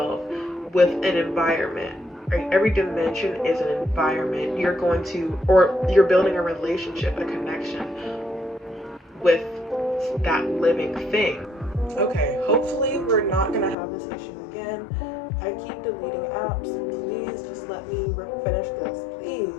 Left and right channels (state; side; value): drops out; right; at 13.8 s